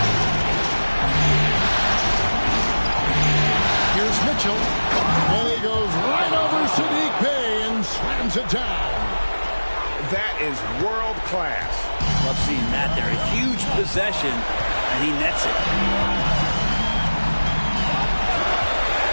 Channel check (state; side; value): inverted; both; correlation -1.00